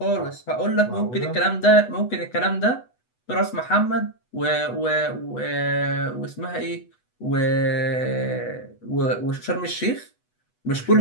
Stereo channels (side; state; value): right; late; 8.1 ms